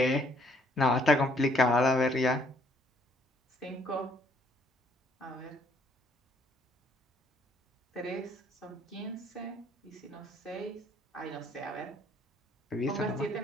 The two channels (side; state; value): both; normal; correlation 0.65